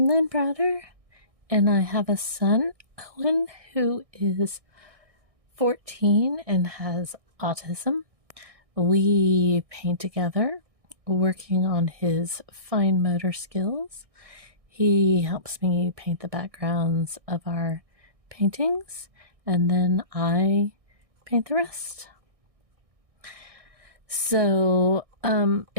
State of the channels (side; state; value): left; late; 1.6 ms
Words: Lynn Browder, and I have a son, Owen, who is 14 and has autism. We paint together, working on his fine motor skills. He helps me paint the backgrounds of our paintings, and then I paint the rest. So